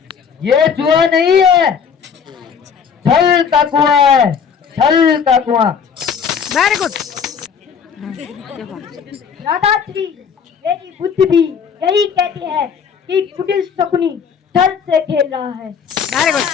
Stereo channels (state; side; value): quieter; right; 6.7 dB